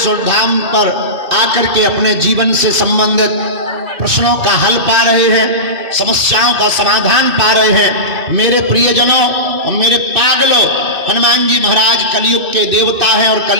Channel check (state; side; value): late; left; 2.6 ms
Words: धाम पर आकर के अपने जीवन से संबंधित प्रश्नों का हल पा रहे हैं, समस्याओं का समाधान पा रहे हैं। मेरे प्रियजनों और मेरे पागलों, हनुमान जी महाराज कलयुग के देवता हैं और